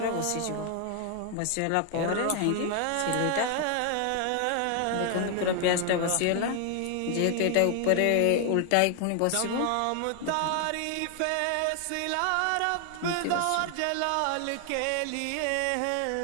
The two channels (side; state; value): both; different; correlation 0.00